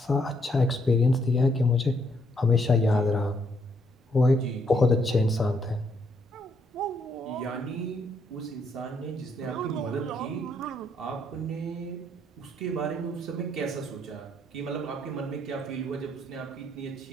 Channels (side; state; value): both; normal; correlation 0.72